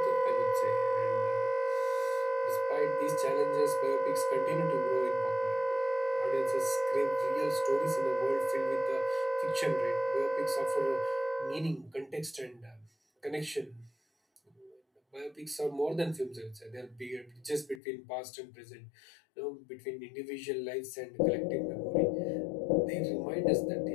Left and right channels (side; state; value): right; drops out; at 17.8 s